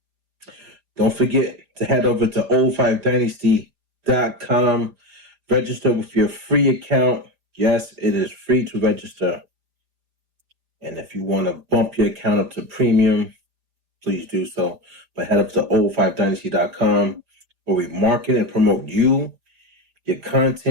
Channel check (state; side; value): late; left; 5.0 ms